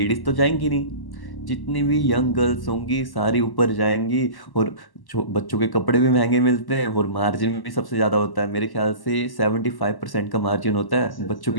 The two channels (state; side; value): late; right; 1.1 ms